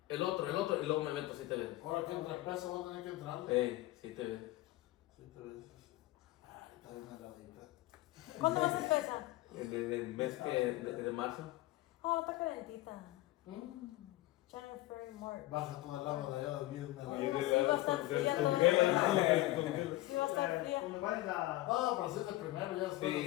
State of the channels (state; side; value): quieter; right; 17.6 dB